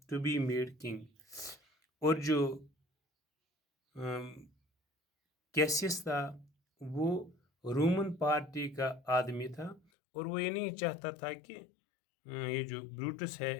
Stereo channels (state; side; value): drops out; right; at 9.8 s